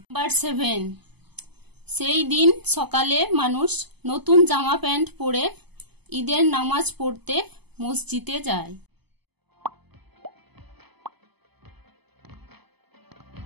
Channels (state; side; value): late; left; 0.99 ms